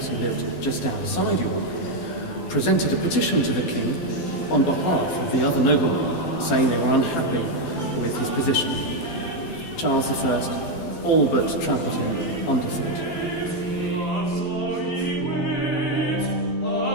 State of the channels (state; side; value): late; right; 12 ms